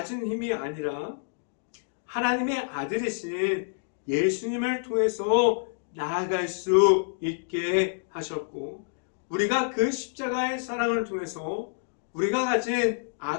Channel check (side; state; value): right; silent; digital silence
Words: 힘이 아니라 하나님의 아들이신 예수님을 통해서 나아갈 수 있게 하셨고, 우리가 그 십자가의 사랑을 통해서 우리가 가진